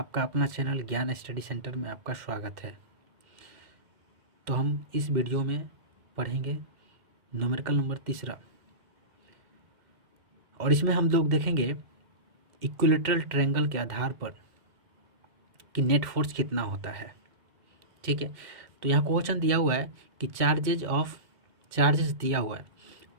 अपना channel ज्ञान स्टडी सेंटर में आपका स्वागत है। तो हम इस वीडियो में पढ़ेंगे न्यूमेरिकल नंबर तीसरा, और इसमें हम लोग देखेंगे इक्विलेटरल ट्रायंगल के आधार पर कि नेट फोर्स कितना होता है। ठीक है, तो यहाँ क्वेश्चन दिया हुआ है कि चार्जेस दिया हुआ है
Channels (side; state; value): left; late; 2.2 ms